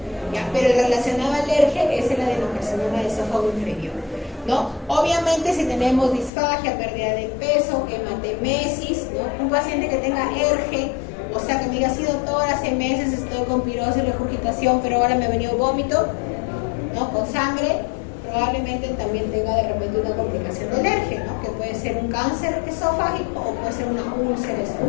¿ya? Pero el relacionado al ERGE es el adenocarcinoma de esófago inferior, ¿no? Obviamente si tenemos disfagia, pérdida de peso, hematemesis, ¿no? Un paciente que tenga ERGE, o sea que me diga, sido doctor, hace meses estoy con pirosis, regurgitación, pero ahora me ha venido vómito, ¿no? Con sangre, probablemente también tenga de repente una complicación del ERGE, ¿no? Que puede ser un cáncer esofágico o puede ser una úlcera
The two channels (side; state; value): right; drops out; at 6.3 s